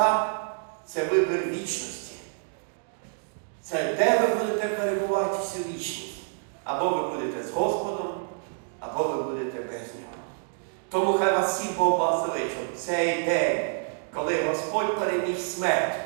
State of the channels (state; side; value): silent; left; digital silence